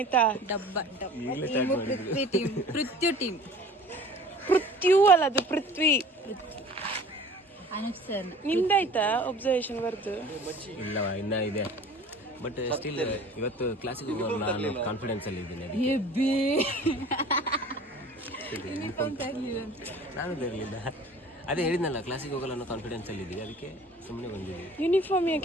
ಪೃಥ್ವಿ ಅಲ್ಲ, ಅದು ಪೃಥ್ವಿ. ನಿಮ್ದಾಯ್ತಾ ಒಬ್ಸರ್ವೇಷನ್ ಬರ್ದು? ಇಲ್ಲ, ಇನ್ನ ಇದೆ. ಬಟ್ ಸ್ಟಿಲ್ ಇವತ್ತು ಕ್ಲಾಸಿಗೆ ನಾನು ಕಾನ್ಫಿಡೆನ್ಸ್ ಅಲ್ಲಿ ಇದ್ದೀನಿ. ನಾನು ತರಲಿಲ್ಲ, ಅದೇ ಹೇಳಿದ್ನಲ್ಲ, ಕ್ಲಾಸಿಗೆ ಹೋಗಲ್ಲ ಅನ್ನೋ ಕಾನ್ಫಿಡೆನ್ಸ್ ಅಲ್ಲಿ ಇದ್ದೀವಿ, ಅದಕ್ಕೆ ಸುಮ್ಮನೆ ಬಂದಿದ್ದೀವಿ. ಯೂನಿಫಾರ್ಮ್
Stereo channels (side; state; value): both; normal; correlation 0.45